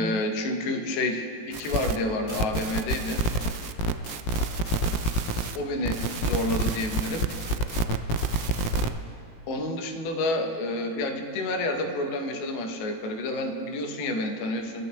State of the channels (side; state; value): right; late; 18 ms